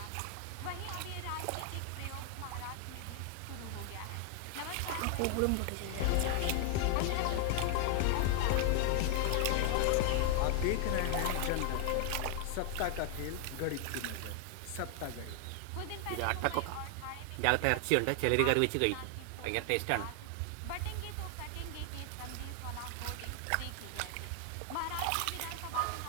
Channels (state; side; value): different; both; correlation 0.00